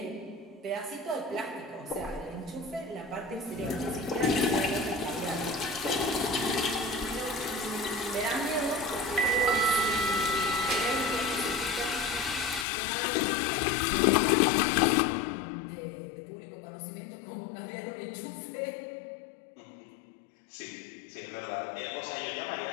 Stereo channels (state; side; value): drops out; right; at 12.7 s